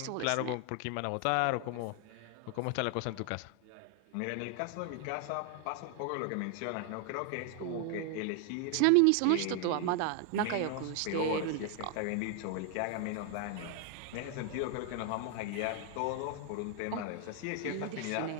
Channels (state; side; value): different; both; correlation 0.00